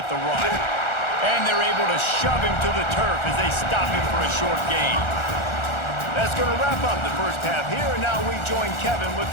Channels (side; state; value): right; late; 1.4 ms